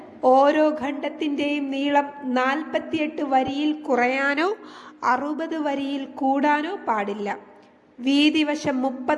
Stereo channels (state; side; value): identical; both; correlation 1.00